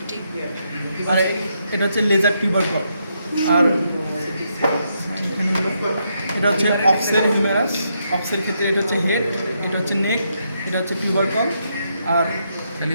এটা হচ্ছে লেজার টিউবারকল। আর এখানে হলো এটা হচ্ছে অক্সের হিউমেরাস। অক্সের ক্ষেত্রে এটা হচ্ছে হেড, এটা হচ্ছে নেক, এটা হচ্ছে টিউবারকল। আর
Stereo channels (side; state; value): both; inverted; correlation -0.79